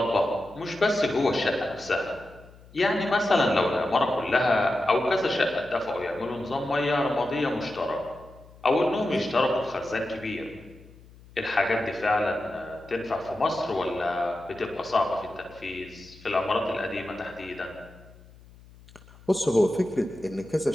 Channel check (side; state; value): left; noise; hum, 23 dB below the sound